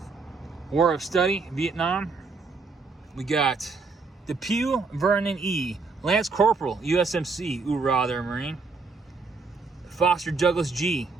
war of study, Vietnam, we got Depew Vernon E., Lance Corporal USMC, Hoorah there, Marine. Foster Douglas G.,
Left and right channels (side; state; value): left; quieter; 4.2 dB